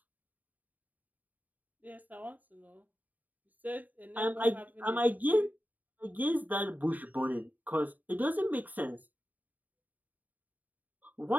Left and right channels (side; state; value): left; late; 0.082 ms